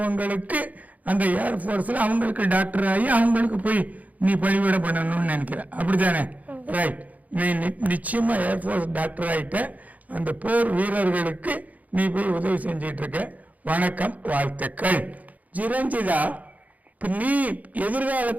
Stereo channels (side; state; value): left; late; 0.076 ms